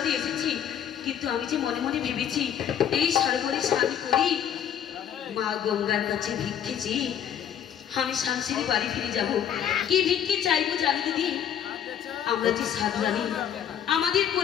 এসেছি, কিন্তু আমি যে মনে মনে ভেবেছি এই সরোবরে স্নান করি, মা গঙ্গার কাছে ভিক্ষেছি, আমি শান্তির বাড়ি ফিরে যাব। কি ভিক্ষে চাইবো জানি দিদি? আমরা যে সাধু রানী, আমাদের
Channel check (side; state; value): right; quieter; 9.2 dB